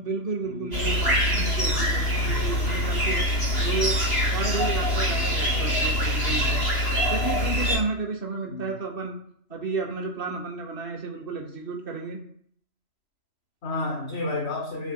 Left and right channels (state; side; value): late; right; 3.0 ms